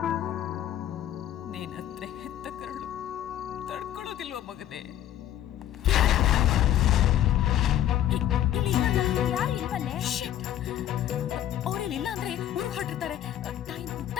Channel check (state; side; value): quieter; right; 11.7 dB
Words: ನೀನ್ ಹತ್ರ ಹೆತ್ತ ಕರಳು ತಡ್ಕೊಳ್ಳೋದಿಲ್ವ ಮಗನೇ? ಅವ್ರೇನಿಲ್ಲ ಅಂದ್ರೆ ಊರಿಗೆ ಹೊರಟಿರ್ತಾರೆ.